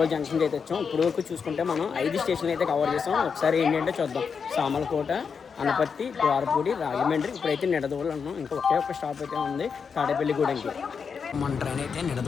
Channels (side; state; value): right; quieter; 6.0 dB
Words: జంక్షన్కి అయితే వచ్చాం. ఇప్పుడు వరకు చూసుకుంటే మనం 5 స్టేషన్లు అయితే కవర్ చేసాం. ఒకసారి ఏంటంటే చూద్దాం. సామలకోట, అనపర్తి, ద్వారపూడి, రాజమండ్రి. ఇప్పుడైతే నిడదవోలు అన్నాం. ఇంకా ఒకే ఒక స్టాప్ అయితే ఉంది తాడేపల్లిగూడెంకి. మన ట్రైన్ అయితే